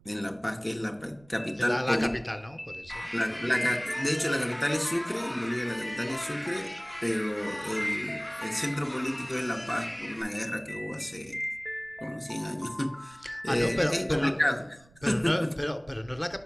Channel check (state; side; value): noise; right; rumble, 27 dB below the sound